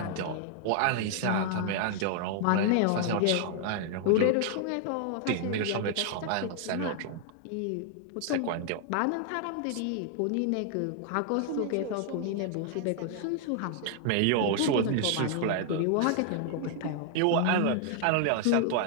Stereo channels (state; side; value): different; both; correlation 0.00